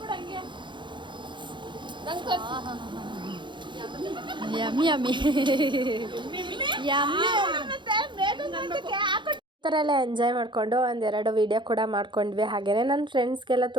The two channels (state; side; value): late; left; 0.23 ms